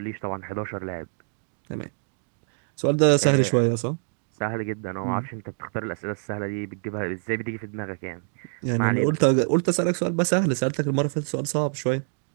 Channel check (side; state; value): left; silent; digital silence